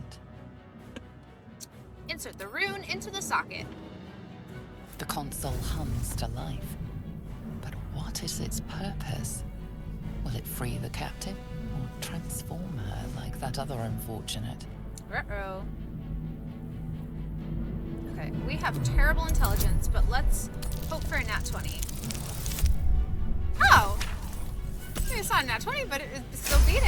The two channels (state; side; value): identical; both; correlation 1.00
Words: Insert the rune into the socket. The console hums to life. But what is its purpose? Will it free the captive or transform her like that other unfortunate? Ruh-roh. Okay, we have terrible intelligence, but let's hope for a nat 20. Oh! It's not a nat 20, but it still beat